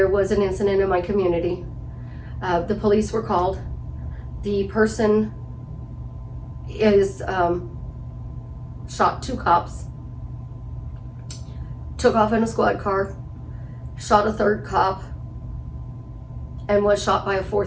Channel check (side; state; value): both; identical; correlation 1.00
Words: was an incident in my community. The police were called. The person is shot 2 cops, took off in a squad car, shot a 3rd cop, and was shot by a